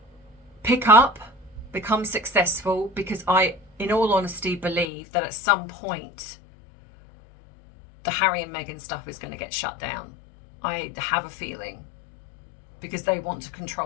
pick up, become successful, because I, in all honesty, believe that at some point the Harry and Meghan stuff is going to get shut down. I have a feeling, because they want to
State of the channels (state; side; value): drops out; right; at 4.9 s